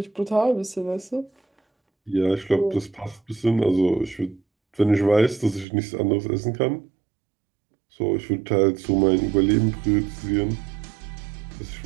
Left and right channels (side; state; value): left; drops out; at 5.7 s